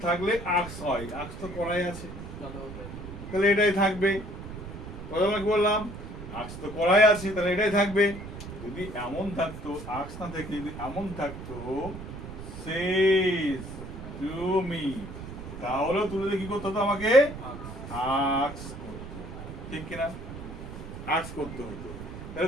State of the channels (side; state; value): right; noise; rumble, 10 dB below the sound